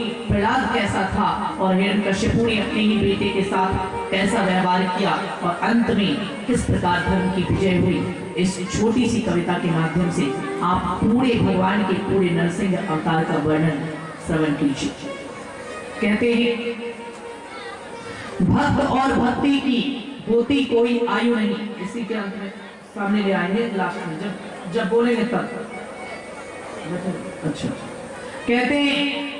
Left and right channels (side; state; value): both; identical; correlation 1.00